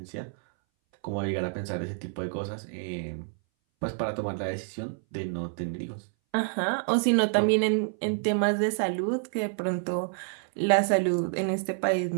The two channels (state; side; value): silent; left; 59 dB below the other